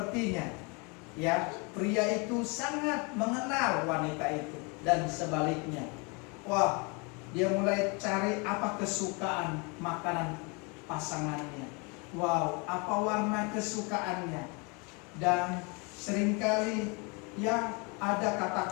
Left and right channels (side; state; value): right; quieter; 31.1 dB